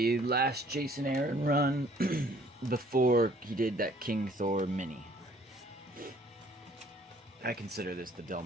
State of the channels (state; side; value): normal; both; correlation 0.58